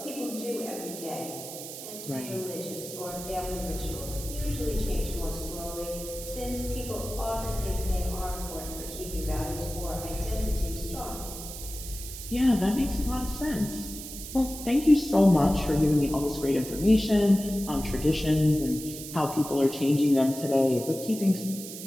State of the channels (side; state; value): right; noise; hiss, 10 dB below the sound